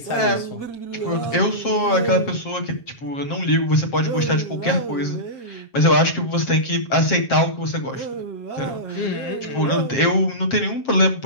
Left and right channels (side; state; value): right; late; 7.5 ms